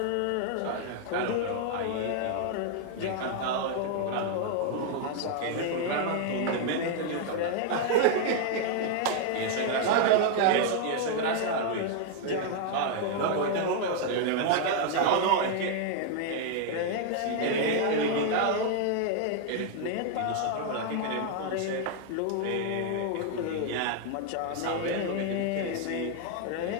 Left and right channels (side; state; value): both; different; correlation 0.00